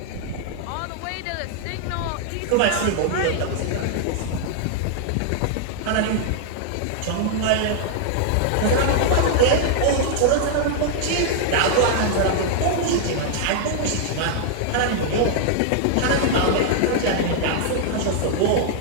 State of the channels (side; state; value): both; different; correlation -0.01